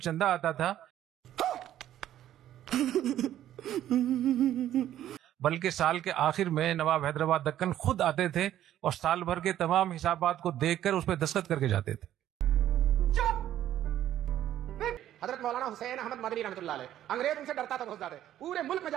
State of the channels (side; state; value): left; quieter; 12.0 dB